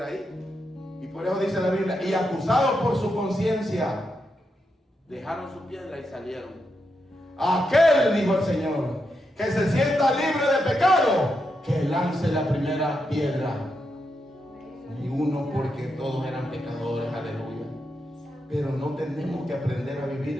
ahí. Y por eso dice la Biblia, y acusados por su conciencia, dejaron su piedra y salieron. Aquel, dijo el Señor, que se sienta libre de pecado, que lance la primera piedra. Ni uno, porque todos eran pecadores, aleluya. Pero no tenemos que aprender a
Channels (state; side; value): normal; both; correlation 0.84